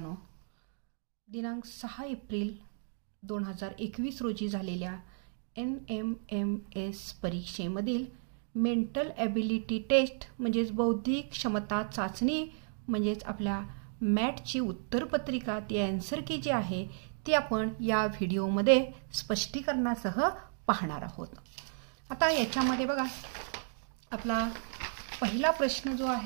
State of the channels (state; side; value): silent; left; digital silence